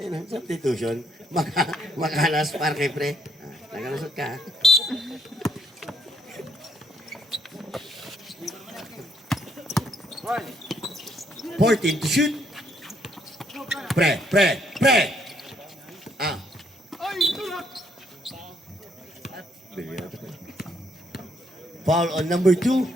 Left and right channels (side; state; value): both; normal; correlation 0.70